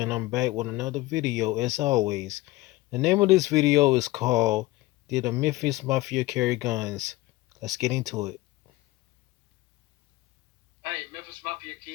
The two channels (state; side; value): quieter; right; 19.2 dB